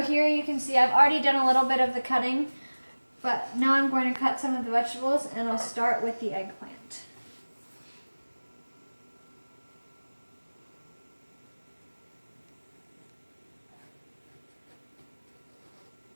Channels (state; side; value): inverted; both; correlation -1.00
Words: here you can see I've already done a little bit of the cutting, but now I'm going to cut some of the vegetables, and I'll start with the eggplant.